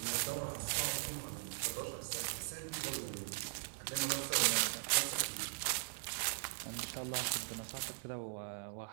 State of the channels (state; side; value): silent; left; digital silence